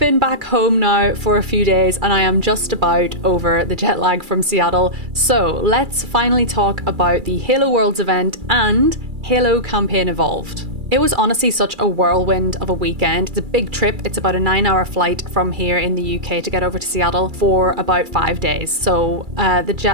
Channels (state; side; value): late; left; 2.3 ms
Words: back home now for a few days and I am just about over the jet lag from Seattle. So let's finally talk about the Halo Worlds event and Halo Campaign Evolved. It was honestly such a whirlwind of a weekend. It's a big trip. It's about a 9-hour flight from here in the UK to get over to Seattle for about 5 days. So the